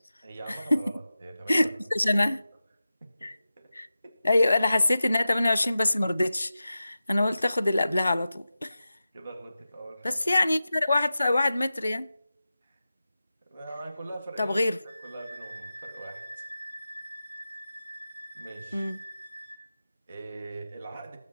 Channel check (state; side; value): inverted; both; correlation -0.93